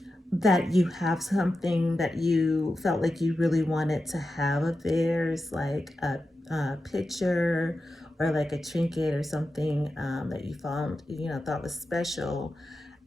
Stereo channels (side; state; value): both; normal; correlation 0.91